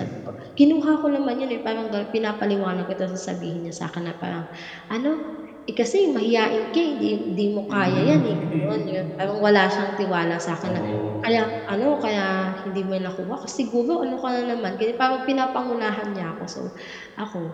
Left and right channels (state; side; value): identical; both; correlation 1.00